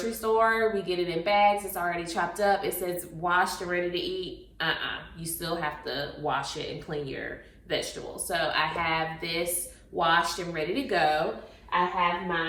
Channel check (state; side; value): identical; both; correlation 1.00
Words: store. We get it in bags. It's already chopped up. It says washed and ready to eat. You still have to wash it and clean your vegetables. So I have this washed and ready to go. I have